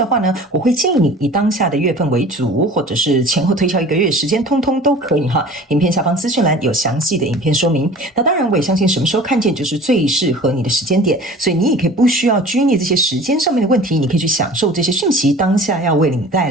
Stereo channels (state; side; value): normal; both; correlation 0.43